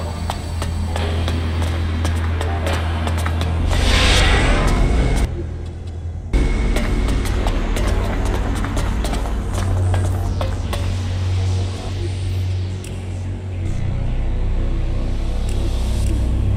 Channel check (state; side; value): identical; both; correlation 1.00